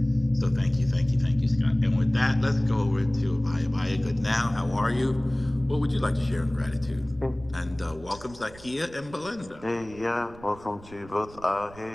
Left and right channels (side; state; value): right; noise; rumble, 20 dB below the sound